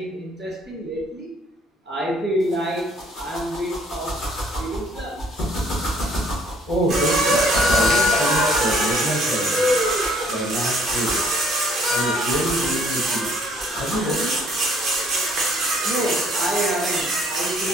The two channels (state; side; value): normal; both; correlation 0.61